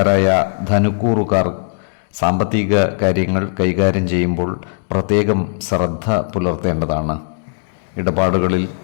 ധനുക്കൂറുകാർ സാമ്പത്തിക കാര്യങ്ങൾ കൈകാര്യം ചെയ്യുമ്പോൾ പ്രത്യേകം ശ്രദ്ധ പുലർത്തേണ്ടതാണ്. ഇടപാടുകളിൽ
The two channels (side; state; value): right; silent; digital silence